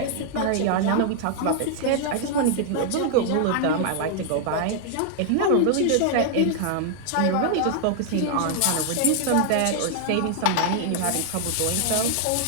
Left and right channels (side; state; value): both; different; correlation 0.00